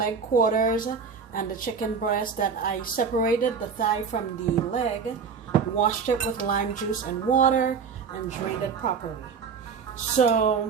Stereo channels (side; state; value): left; quieter; 6.0 dB